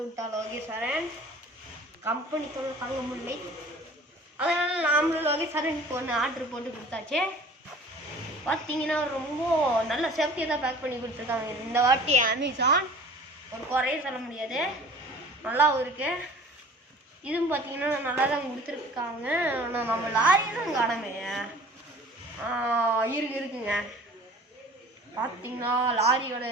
விட்டா லோகேஸ்வரன். கம்பெனி தொல்லை தாங்க முடியலை. அதனால் நாமளும் லோகேஸ்வரனுக்கு ஒன்று ஆர்டர் போட்டு கொடுத்தாச்சு. பார்த்தீங்கன்னா ரொம்ப நல்ல சேஃப்டியாக தான் பேக் பண்ணி கொடுத்துருக்காங்க இந்த வாட்டி அமேசான். ஒரு குறையும் சொல்ல முடியாது, நல்லாவும் இருக்கு. இதுவும் பார்த்தீங்கன்னா நல்லா தான் கொடுத்துருக்காங்க. ஆனால் நம்ம லாரியும் காணமே இருக்குங்க. பார்த்தீங்கன்னா லாரியோட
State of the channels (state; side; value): normal; both; correlation 0.46